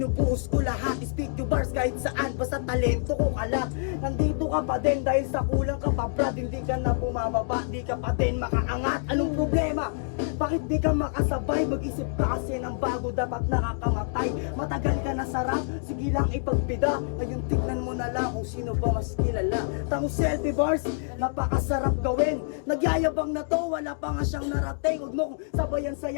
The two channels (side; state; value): right; silent; digital silence